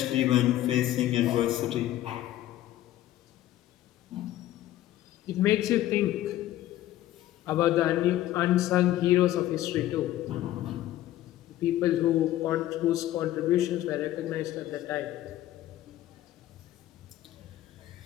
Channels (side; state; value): right; quieter; 13.9 dB